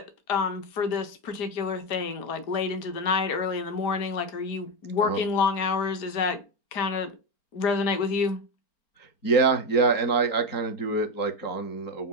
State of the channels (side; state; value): right; late; 4.4 ms